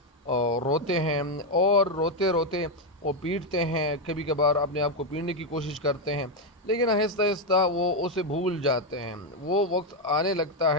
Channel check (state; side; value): normal; both; correlation 0.04